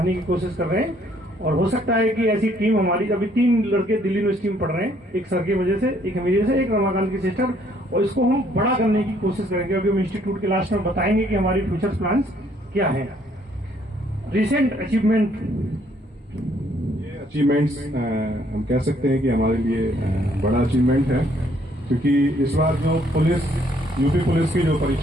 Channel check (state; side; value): normal; both; correlation 0.65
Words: की कोशिश कर रहे हैं। और हो सकता है कि ऐसी टीम हमारी, अभी 3 लड़के दिल्ली यूनिवर्सिटी में पढ़ रहे हैं, एक सर की वजह से, एक मेरी वजह से, एक रमाकांत की सिस्टर, और इसको हम बड़ा करने की कोशिश करेंगे। अभी हम इंस्टीट्यूट के लास्ट में बताएंगे कि हमारी फ्यूचर प्लान्स क्या है। रिसेंट अचीवमेंट, ये अचीवमेंट्स हम कह सकते हैं कि हमारे लिए बड़ा अचीवमेंट है, क्योंकि इस बार जो यूपी पुलिस की जो